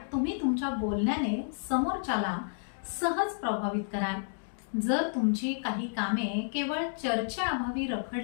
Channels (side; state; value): right; silent; digital silence